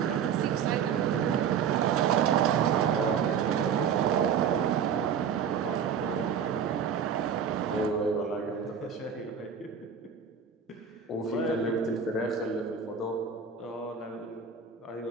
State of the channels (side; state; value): left; quieter; 7.1 dB